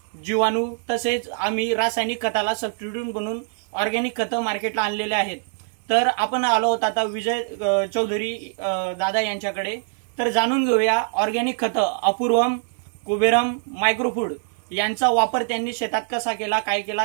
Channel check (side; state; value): left; silent; 63 dB below the other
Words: जीवाणू तसेच आम्ही रासायनिक खताला सबस्टिट्यूट बनवून ऑर्गॅनिक खतं मार्केटला आणलेले आहेत। तर आपण आलो आहोत आता विजय चौधरी दादा यांच्याकडे। तर जाणून घेऊया ऑर्गॅनिक खतं अपूर्वम, कुबेरम, मायक्रोफूड यांचा वापर त्यांनी शेतात कसा केला, काय